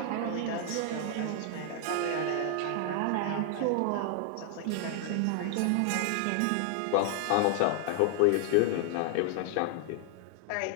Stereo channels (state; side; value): different; both; correlation 0.00